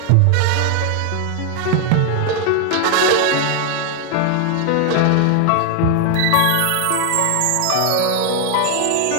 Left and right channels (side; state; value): both; different; correlation 0.00